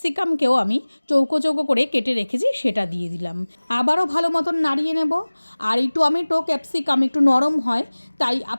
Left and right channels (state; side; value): inverted; both; correlation -1.00